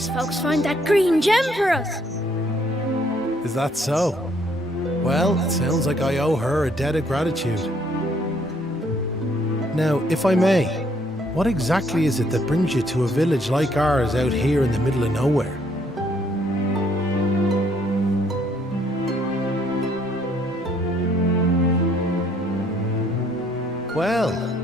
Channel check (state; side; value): normal; both; correlation 0.66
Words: folks find that green gem for us. Is that so? Well, it sounds like I owe her a debt of gratitude. Now, if I may, what exactly is it that brings you to a village like ours out here in the middle of nowhere? Well,